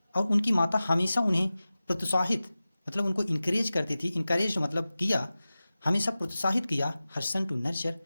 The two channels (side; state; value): both; inverted; correlation -0.96